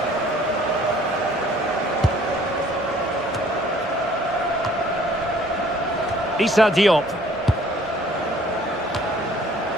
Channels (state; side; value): noise; left; rumble, 29 dB below the sound